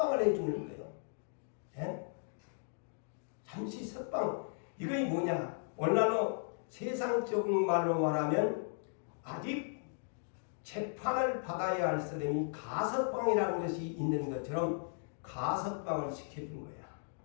해주는 거예요. 예? 잠시 석방. 이게 뭐냐? 오늘날로 세상적인 말로 말하면 아직 재판을 받아야 할 사람이 가석방이라는 것이 있는 것처럼 가석방을 시켜준 거야.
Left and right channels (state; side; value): silent; right; digital silence